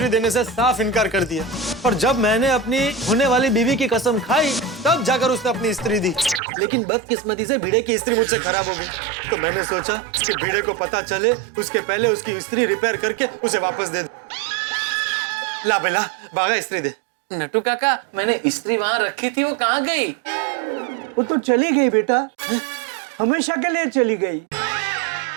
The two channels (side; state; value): left; drops out; at 6.4 s